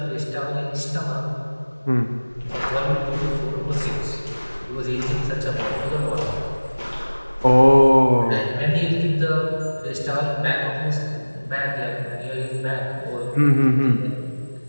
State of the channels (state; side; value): inverted; both; correlation -1.00